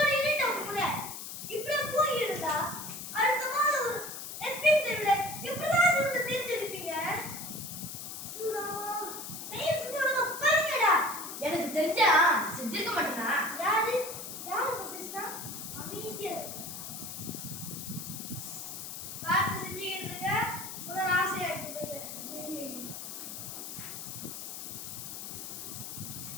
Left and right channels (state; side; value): noise; left; hiss, 8 dB below the sound